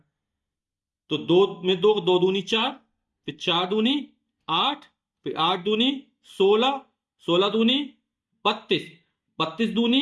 तो दो में दो, दो दूनी 4, फिर 4 दूनी 8, फिर 8 दूनी 16, 16 दूनी 32, 32 दूनी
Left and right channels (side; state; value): both; identical; correlation 1.00